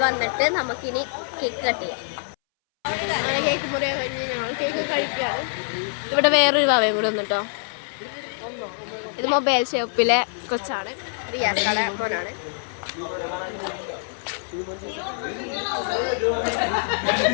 വന്നിട്ട് നമുക്കിനി കേക്ക് കട്ട് ചെയ്യാം. അങ്ങനെ കേക്ക് മുറിയാൻ കഴിഞ്ഞ് ഞങ്ങൾ കേക്ക് കഴിക്കുകയാണ്. ഇവിടെ വേറൊരു ഭാവയും കൂടി വന്നിട്ടോ. ഇത് മൊബൈൽ ഷോപ്പിലെ കൊച്ചാണ്, റിയാസ് കട മോനാണ്.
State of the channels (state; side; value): silent; right; 61 dB below the other